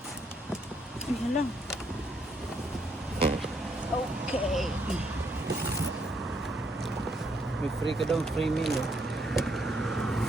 Yan lang. Okay. May free ka daw, free meal eh.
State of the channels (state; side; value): normal; both; correlation 0.73